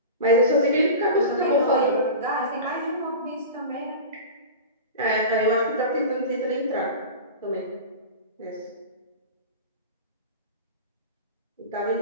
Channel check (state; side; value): inverted; both; correlation -0.31